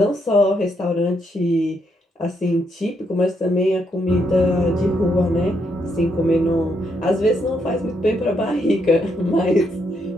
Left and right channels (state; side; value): normal; both; correlation 0.76